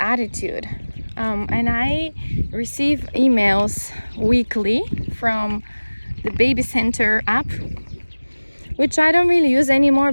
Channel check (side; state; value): both; inverted; correlation -1.00